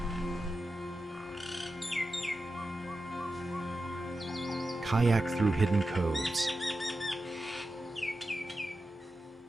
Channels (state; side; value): normal; both; correlation 0.92